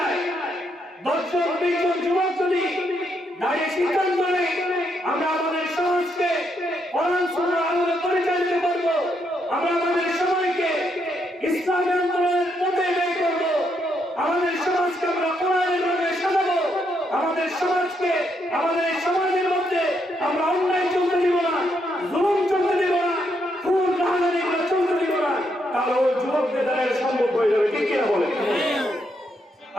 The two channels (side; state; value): both; normal; correlation 0.78